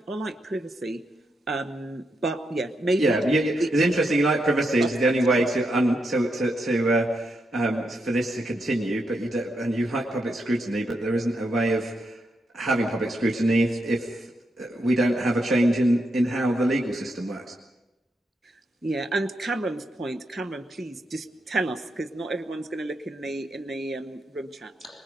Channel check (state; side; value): normal; both; correlation 0.83